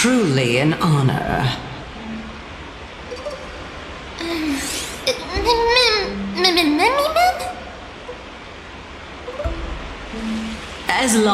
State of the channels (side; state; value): both; identical; correlation 1.00